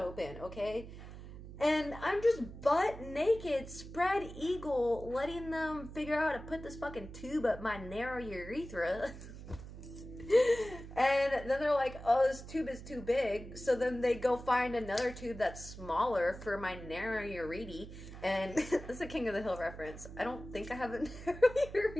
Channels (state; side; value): noise; right; hum, 13 dB below the sound